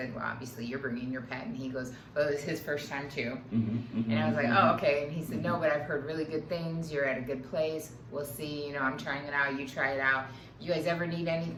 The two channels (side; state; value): both; identical; correlation 1.00